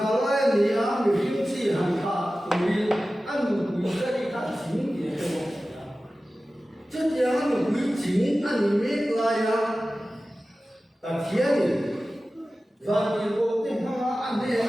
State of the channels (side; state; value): both; normal; correlation 0.95